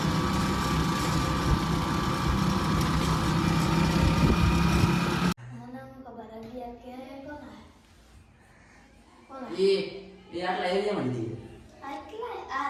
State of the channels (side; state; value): both; identical; correlation 1.00